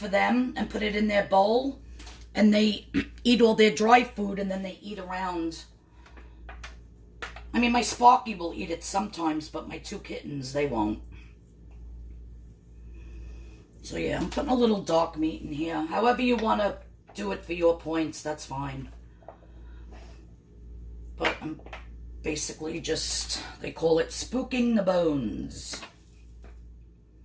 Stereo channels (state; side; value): identical; both; correlation 1.00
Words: them and put it in their bowl. And they eat all their dry food, and then they eat around I mean, my Sparky will eat it sometimes, but my 2 kittens, they won't. So yeah, I'm putting a little dark meat in here. However you want to do it for your points, that's fine. But I'm basically just, they call it spooking the bones.